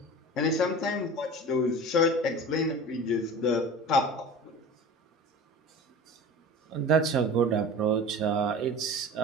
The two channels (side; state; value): both; normal; correlation 0.37